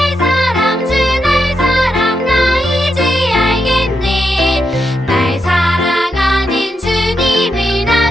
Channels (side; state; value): both; normal; correlation 0.84